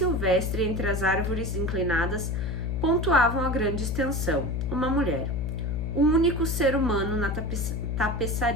entre as árvores inclinadas pontuavam a grande extensão. Uma mulher, o único ser humano na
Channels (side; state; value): left; noise; hum, 2 dB below the sound